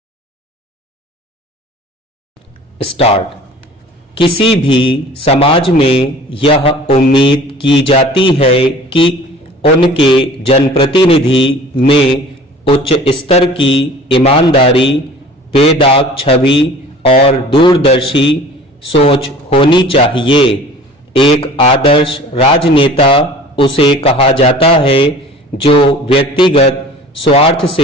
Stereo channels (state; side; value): normal; both; correlation 0.45